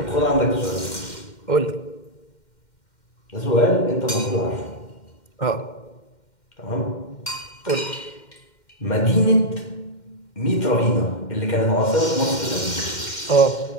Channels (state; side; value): late; right; 2.1 ms